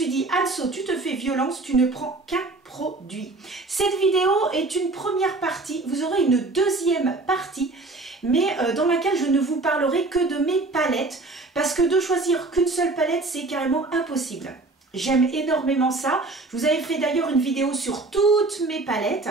dit, Anso, tu te fais violence, tu ne prends qu'un produit. Cette vidéo est une première partie, vous aurez une deuxième partie, mais dans laquelle je ne vous parlerai que de mes palettes, parce que de choisir qu'une seule palette, c'est carrément impossible. J'aime énormément ça. Je vous avais fait d'ailleurs une vidéo sur toutes mes palettes,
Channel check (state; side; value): quieter; left; 3.2 dB